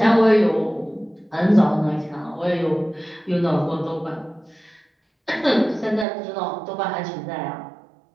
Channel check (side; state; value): left; drops out; at 6.1 s